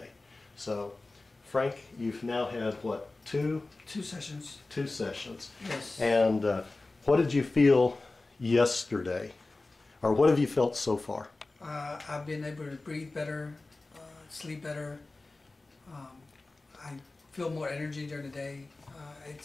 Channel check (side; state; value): right; quieter; 3.2 dB